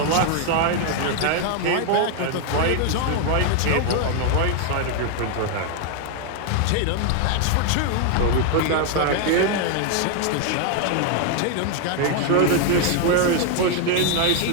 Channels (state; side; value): different; both; correlation 0.00